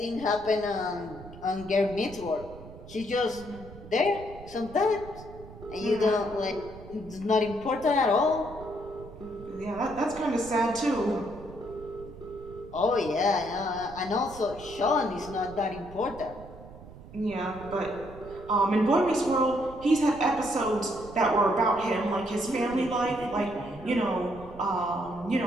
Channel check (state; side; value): noise; right; rumble, 17 dB below the sound